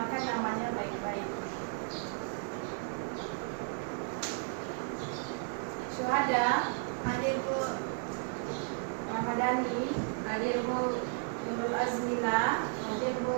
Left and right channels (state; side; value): silent; left; 55 dB below the other